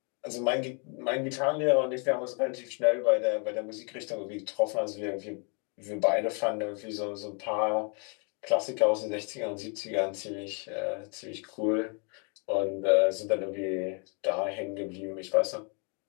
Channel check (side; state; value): right; quieter; 37.1 dB